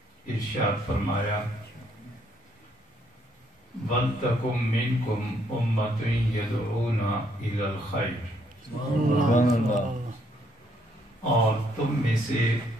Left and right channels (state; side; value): normal; both; correlation 0.70